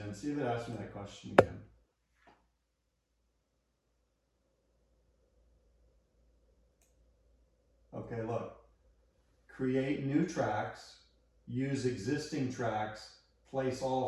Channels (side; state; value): both; identical; correlation 1.00